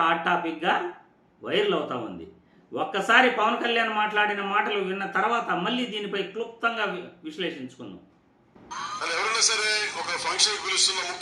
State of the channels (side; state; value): both; identical; correlation 1.00